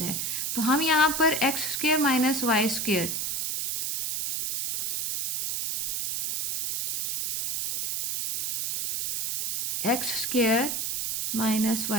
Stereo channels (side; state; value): right; noise; hiss, 2 dB below the sound